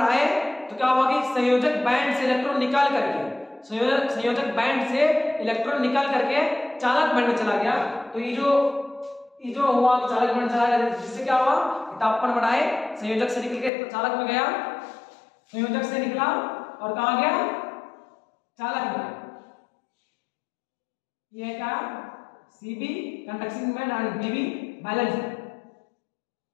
तो क्या होगा कि संयोजक बैंड से इलेक्ट्रॉन निकाल करके चालक बैंड में चला गया। तो ये जो हुआ चालक बैंड चला गया, जिससे क्या हुआ, तापमान बढ़ाए, संयोजक से निकल के चालक में गया, संयोजक से निकला और कहां गया, चालक में ये क्या सीबी कंडक्टिंग मोमेंट और बीबी बैलेंस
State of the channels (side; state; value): right; drops out; at 13.7 s